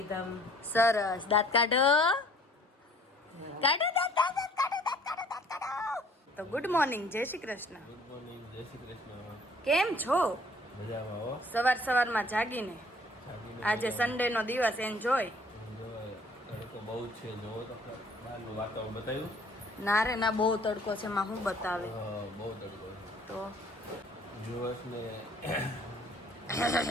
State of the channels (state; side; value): normal; both; correlation 0.56